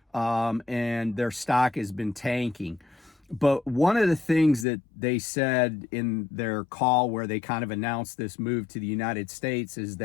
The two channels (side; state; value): right; drops out; at 4.7 s